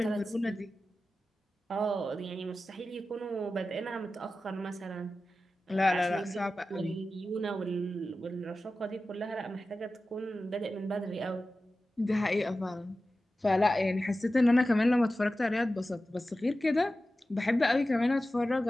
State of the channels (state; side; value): normal; both; correlation 0.94